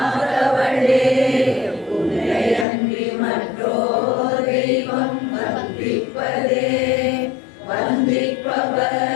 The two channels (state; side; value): drops out; right; at 2.7 s